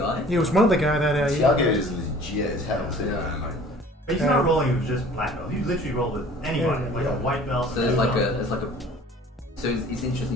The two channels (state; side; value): normal; both; correlation 0.49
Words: He was one of the guy that. Tiago is legit as hell, too, Yeah. man. Like, But he's not rolling with just black belt. He literally rolled with anybody, like a white belt. So there's so it's